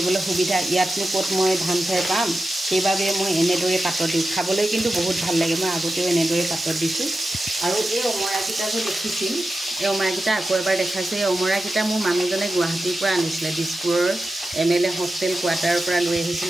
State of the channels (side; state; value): both; normal; correlation 0.92